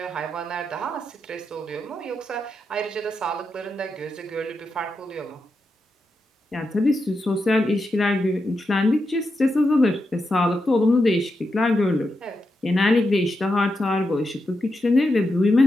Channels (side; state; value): both; normal; correlation 0.86